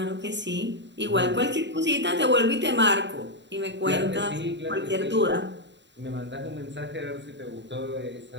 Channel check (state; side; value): late; left; 0.52 ms